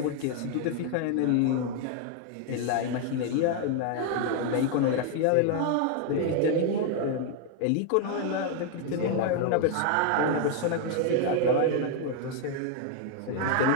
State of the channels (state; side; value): different; both; correlation 0.00